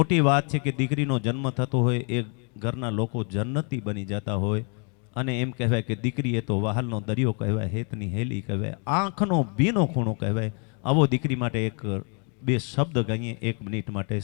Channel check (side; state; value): right; quieter; 38.3 dB